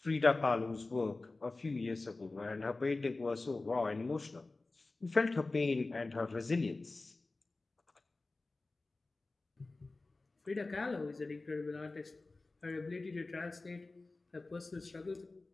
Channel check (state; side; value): quieter; right; 3.3 dB